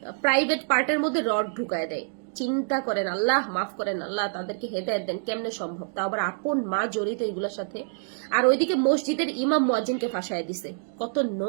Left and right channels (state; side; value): silent; left; digital silence